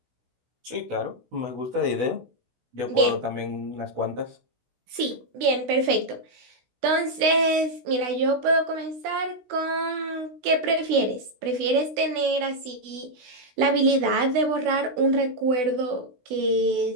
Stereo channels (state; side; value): late; left; 16 ms